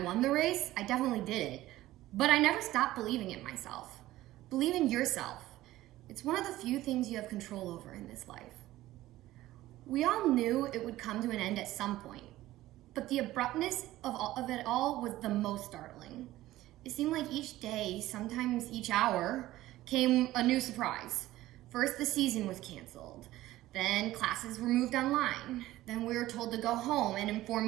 won the race, I definitely did it, but I never stopped believing in myself. Believe in yourself. It's one of the few things you have control over in this life. We all knew it would come to an end at some point, but the abruptness of it all was the most startling. It seemed like each day, sometimes each hour, came a new surprise. First, the season was canceled. Then classes were moved online. Then we were told to go home and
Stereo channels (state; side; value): quieter; left; 15.9 dB